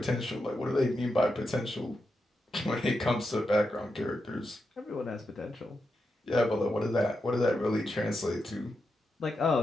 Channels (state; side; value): normal; both; correlation 0.87